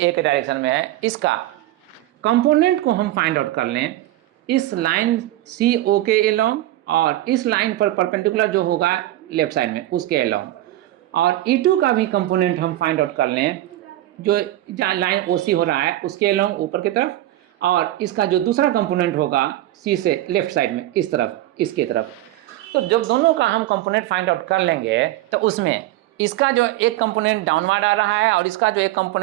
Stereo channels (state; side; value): quieter; left; 15.2 dB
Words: के डायरेक्शन में है, इसका कंपोनेंट को हम फाइंड आउट कर लें इस लाइन CO के अलोंग, और इस लाइन पर परपेंडिकुलर जो होगा लेफ्ट साइड में उसके अलोंग, और E2 का भी कंपोनेंट हम फाइंड आउट कर लें जो जहाँ लाइन OC हो रहा है उसके अलोंग ऊपर की तरफ, और इसका जो दूसरा कंपोनेंट होगा C से लेफ्ट साइड में इस तरफ, इसके तरफ। तो जब दोनों का हम कंपोनेंट फाइंड आउट कर लेंगे तो उसमें इसका जो एक कंपोनेंट डाउनवर्ड आ रहा है और इसका जो एक